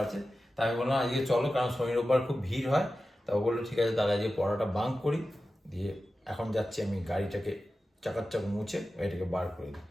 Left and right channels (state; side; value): normal; both; correlation 0.94